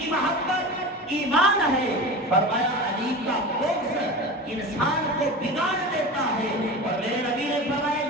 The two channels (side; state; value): both; normal; correlation 0.30